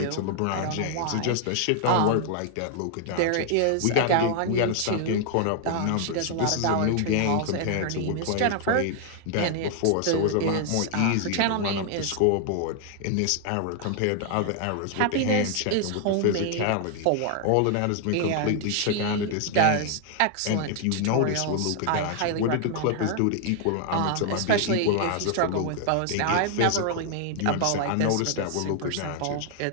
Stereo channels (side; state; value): both; different; correlation 0.00